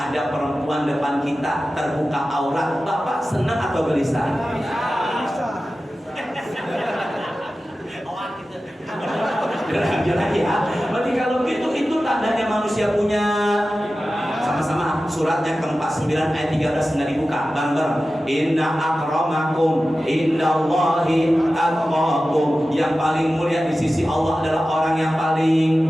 perempuan depan kita terbuka aurat, Bapak senang atau gelisah? Jalan ya. Berarti kalau gitu itu tandanya manusia punya. Sama-sama suratnya ke-49 ayat 13 nggak dibuka. Bareng-bareng. Inna akramakum indallahi atqakum. Yang paling mulia di sisi Allah adalah orang yang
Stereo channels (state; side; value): normal; both; correlation 0.94